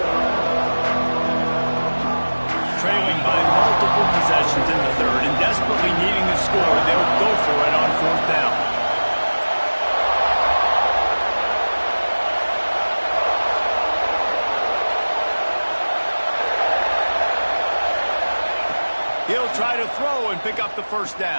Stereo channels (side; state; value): both; inverted; correlation -1.00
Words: Trailing by multiple possessions in the third and desperately needing to score, they'll go for it on 4th down. He'll try to throw and pick up the first